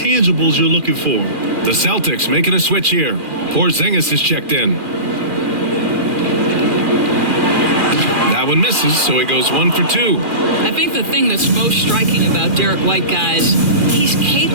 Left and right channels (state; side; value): late; left; 2.4 ms